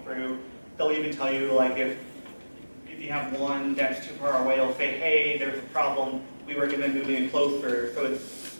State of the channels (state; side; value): inverted; both; correlation -1.00